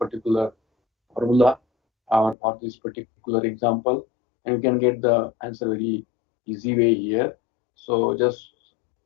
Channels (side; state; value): right; drops out; at 2.4 s